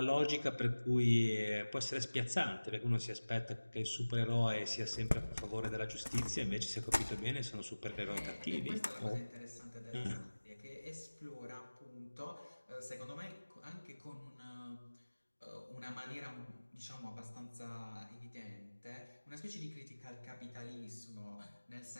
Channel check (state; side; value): inverted; both; correlation -1.00